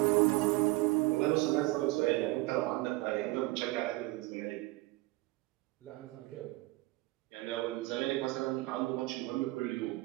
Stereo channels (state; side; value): quieter; left; 20.9 dB